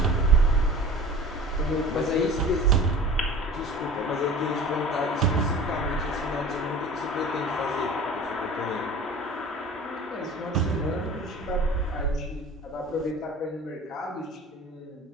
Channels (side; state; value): both; normal; correlation 0.41